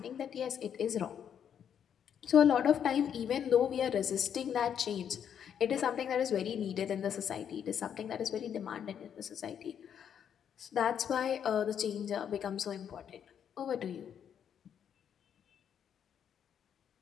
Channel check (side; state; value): right; quieter; 8.5 dB